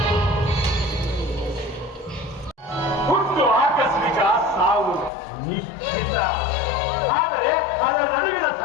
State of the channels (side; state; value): right; drops out; at 5.1 s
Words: ಹುಟ್ಟು ಆಕಸ್ಮಿಕ, ಸಾವು ನಿಶ್ಚಿತ. ಆದರೆ ಅದರ ನಡುವಿನ